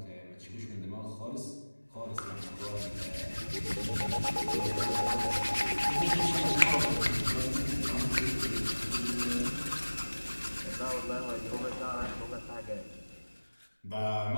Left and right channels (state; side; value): inverted; both; correlation -1.00